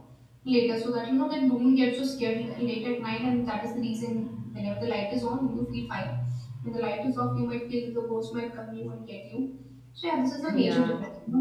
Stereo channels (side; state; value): both; identical; correlation 1.00